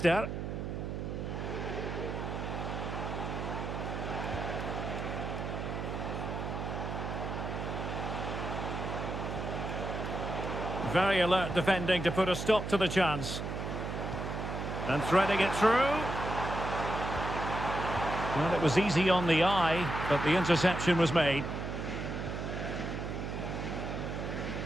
Very alert defending to put a stop to the chance. And threading it through. Well, it was easy on the eye, but the interception was made.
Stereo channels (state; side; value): noise; right; hum, 4 dB below the sound